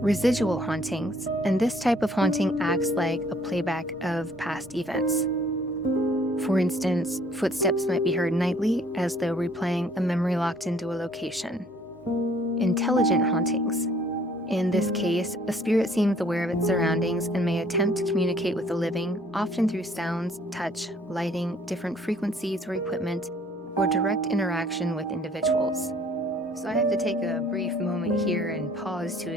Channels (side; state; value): both; normal; correlation 0.59